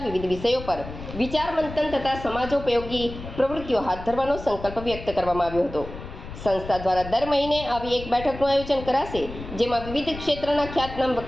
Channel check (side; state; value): left; noise; rumble, 12 dB below the sound